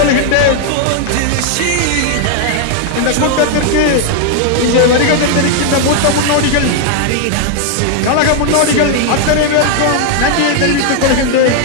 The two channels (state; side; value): different; both; correlation 0.00